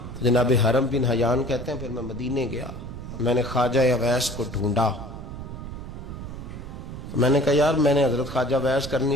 جناب حرم بن حیان کہتے ہیں پھر میں مدینے گیا، میں نے خواجہ اویس کو ڈھونڈا. میں نے کہا یار میں نے حضرت خواجہ اویس کرنی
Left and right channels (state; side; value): noise; right; rumble, 10 dB below the sound